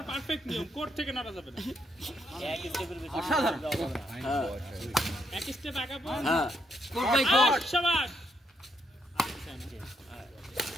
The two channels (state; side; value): normal; both; correlation 0.76